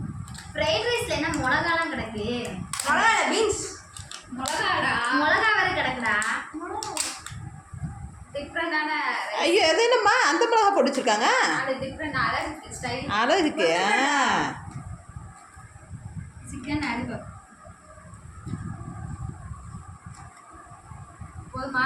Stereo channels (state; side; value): identical; both; correlation 1.00